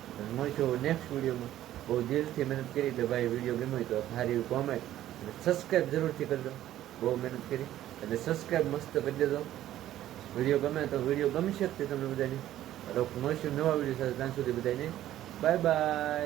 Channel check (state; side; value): quieter; left; 13.1 dB